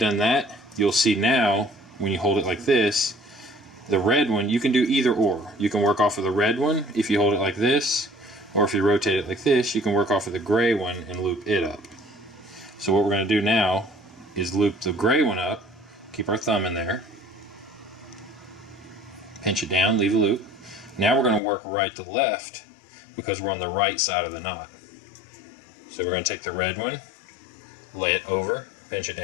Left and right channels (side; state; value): right; drops out; at 21.4 s